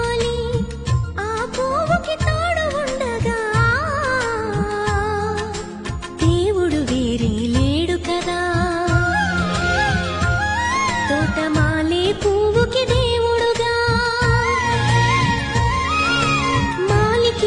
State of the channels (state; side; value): identical; both; correlation 1.00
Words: ఆ పువ్వుకి తోడు ఉండగా దేవుడు వేరే లేడు కదా తోటమాలి పువ్వుకి దేవుడుగా